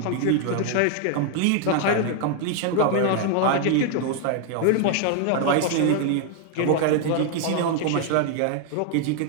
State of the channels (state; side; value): different; both; correlation 0.00